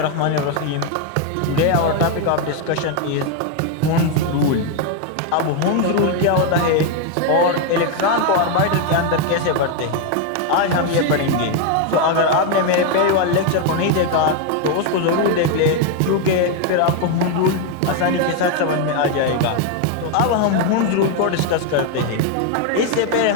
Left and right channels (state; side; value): different; both; correlation 0.01